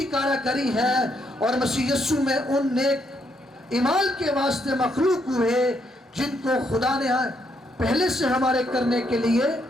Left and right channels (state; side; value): normal; both; correlation 0.75